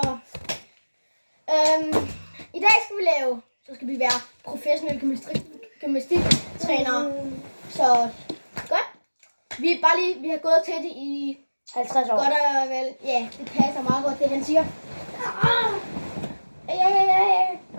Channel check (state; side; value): inverted; both; correlation -1.00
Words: i dag skal vi være professionelle gymnastiktrænere. Så godt. Vi har gået til det i 50 år. godt og vel. Ja, det passer meget godt, det han siger.